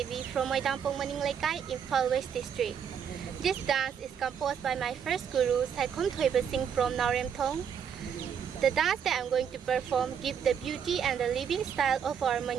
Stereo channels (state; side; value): quieter; left; 7.7 dB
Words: from Moidampong Maninglaikai, Imphal West District. This dance is composed by my first guru, Saikhom Thoiba Singh from Nauremthong. The dance that I'm going to perform gives the beauty and the living style of our